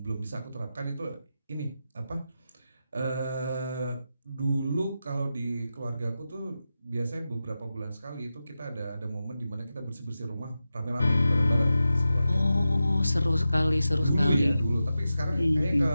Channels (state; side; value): inverted; both; correlation -0.92